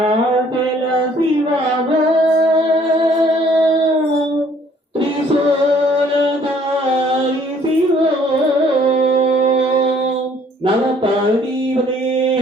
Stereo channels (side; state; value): both; normal; correlation 0.60